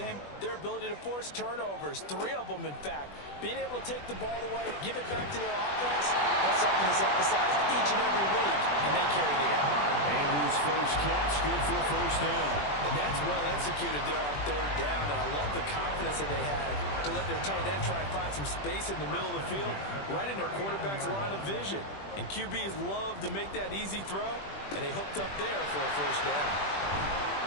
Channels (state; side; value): late; right; 20 ms